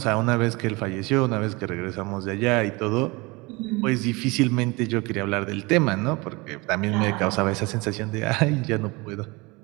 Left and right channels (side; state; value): left; quieter; 25.1 dB